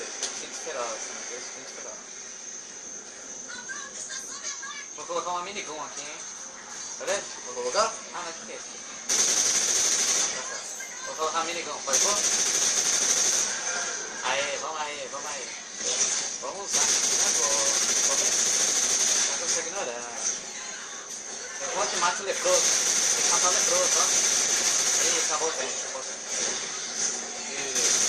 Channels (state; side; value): identical; both; correlation 1.00